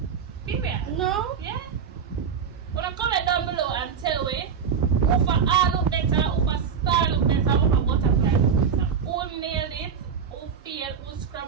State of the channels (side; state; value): left; quieter; 6.7 dB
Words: Period. No? Yeah. When I comment down below and tell me who for art look better, who for star look better, who for butterfly look better. Who nailed it, who failed, who